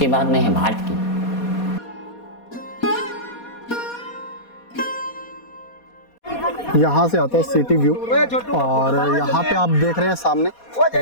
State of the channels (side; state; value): right; late; 4.2 ms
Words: बाद में है भाट की। यहाँ से आता है सिटी व्यू, और यहाँ पे आप देख रहे हैं सामने